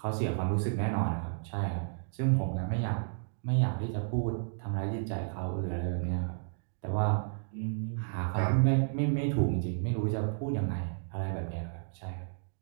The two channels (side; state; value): left; silent; digital silence